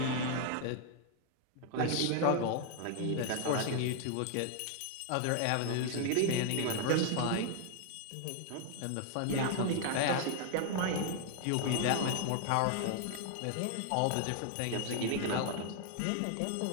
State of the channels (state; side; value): different; both; correlation 0.00